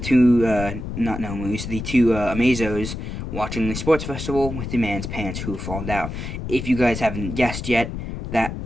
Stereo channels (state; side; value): noise; left; rumble, 7 dB below the sound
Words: two, not Nomus, the two Amazos watching the sports festival with the man's pants who have fallen down. If you guys haven't guessed yet, that